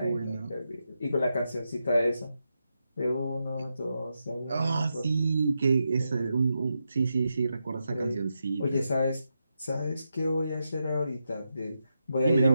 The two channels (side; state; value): both; inverted; correlation -0.86